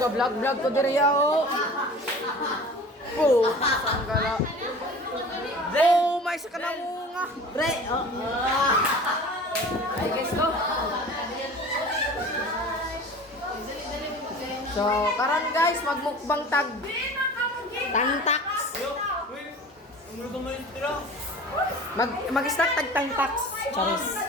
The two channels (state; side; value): normal; both; correlation 0.40